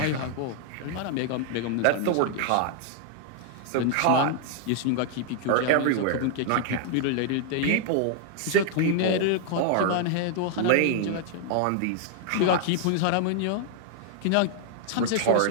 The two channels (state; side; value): different; both; correlation 0.00